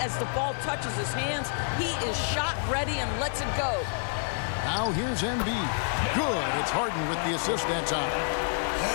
the ball touches his hands, he is shot ready and lets it go. Now here's Embiid. Good. It's Harden with the assist that time.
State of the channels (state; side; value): silent; right; 59 dB below the other